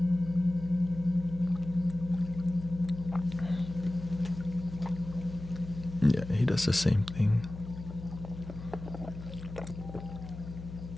Yeah, he does the same thing.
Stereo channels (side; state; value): left; noise; hum, 11 dB below the sound